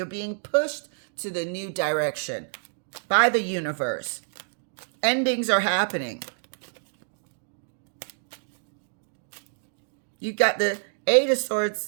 being pushed to the new direction by the universe. Endings are happening. You got the Eight of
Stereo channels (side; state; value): left; silent; digital silence